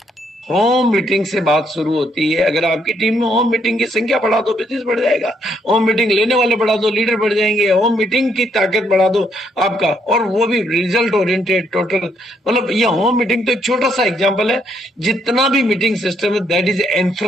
home meeting से बात शुरू होती है। अगर आपकी टीम में होम मीटिंग की संख्या बढ़ा दो, बिजनेस बढ़ जाएगा। होम मीटिंग लेने वाले बढ़ा दो, लीडर बढ़ जाएंगे। होम मीटिंग की ताकत बढ़ा दो आपका, और वो भी रिजल्ट ओरिएंटेड टोटल। मतलब ये होम मीटिंग तो एक छोटा सा एग्जांपल है। जितना भी मीटिंग सिस्टम है, that is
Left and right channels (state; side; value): normal; both; correlation 0.72